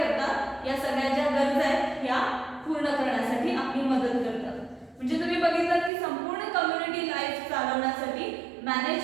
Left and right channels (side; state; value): left; drops out; at 5.9 s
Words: या सगळ्या ज्या गरजा आहेत ह्या पूर्ण करण्यासाठी आपली मदत करतात. म्हणजे तुम्ही बघितलं की संपूर्ण कम्युनिटी लाईफ चालवण्यासाठी